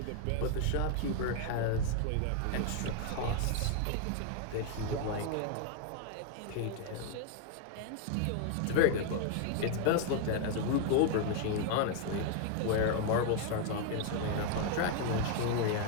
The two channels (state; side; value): different; both; correlation 0.00